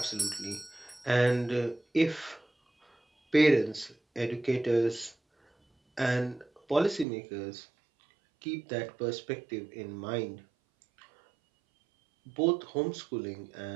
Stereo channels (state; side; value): drops out; left; at 7.1 s